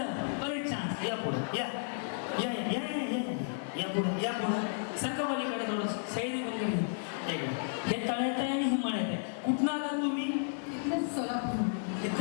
परत चान्स. या पुढं या या या या या या पुढं या पुढं सरका पलीकडे थोडं सैरी पलीकडे. हे तळ्यात आहे आणि हे मळ्यात आहे. कुठनं आला तुम्ही? इथलं सोलापूर.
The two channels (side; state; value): right; silent; digital silence